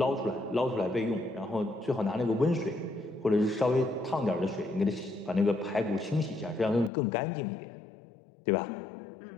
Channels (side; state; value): right; drops out; at 6.9 s